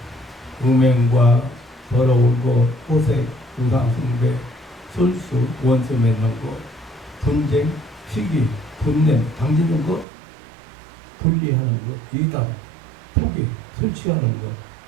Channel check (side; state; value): left; drops out; at 10.1 s